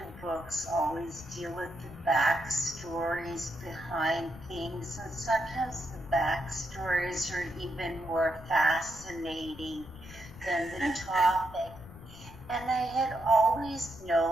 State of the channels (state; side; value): noise; left; rumble, 17 dB below the sound